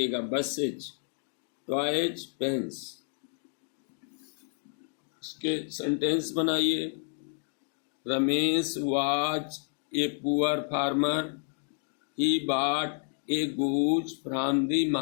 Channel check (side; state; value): right; silent; 58 dB below the other